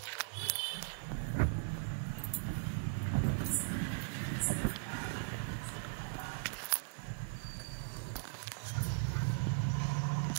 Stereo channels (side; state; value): left; silent; 52 dB below the other